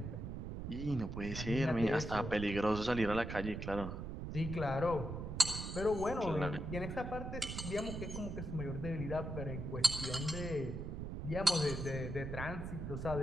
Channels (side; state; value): right; noise; rumble, 6 dB below the sound